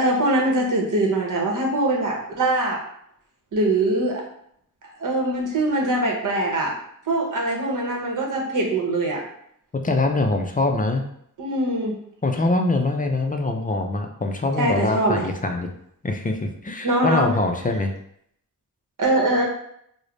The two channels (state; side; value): normal; both; correlation 0.18